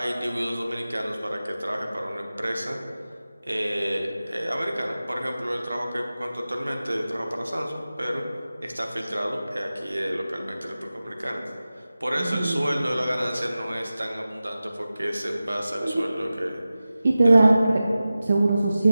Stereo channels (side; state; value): both; inverted; correlation -0.95